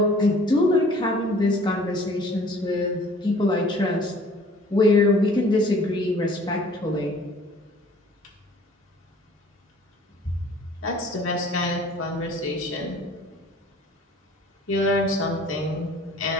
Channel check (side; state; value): both; normal; correlation 0.52